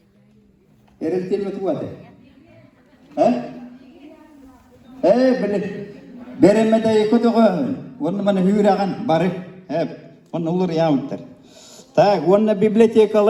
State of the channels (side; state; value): both; identical; correlation 1.00